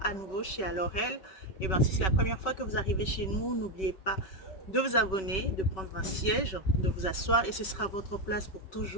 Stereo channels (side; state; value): right; late; 5.3 ms